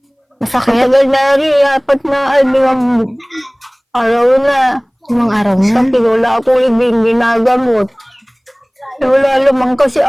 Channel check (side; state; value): both; identical; correlation 1.00